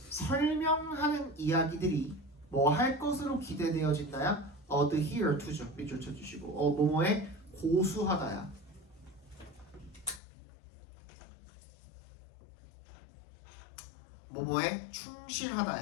설명하는 이야기들이 뭐 할 것으로 기대되어진다야? adhere to죠. 밑줄 쳐주시고 뭐뭐에 고수하다야. 뭐뭐에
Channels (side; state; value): right; drops out; at 10.2 s